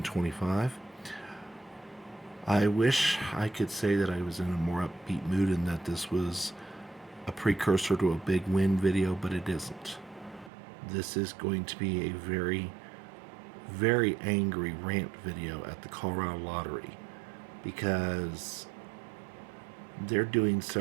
I wish I could say that I was in a more upbeat mood and that this was a precursor to a big win video, but it isn't. This is going to be a very, very angry rant video at the Colorado Lottery because they're doing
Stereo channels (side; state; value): left; drops out; at 10.5 s